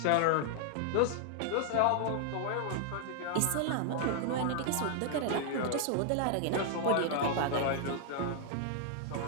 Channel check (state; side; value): different; both; correlation 0.00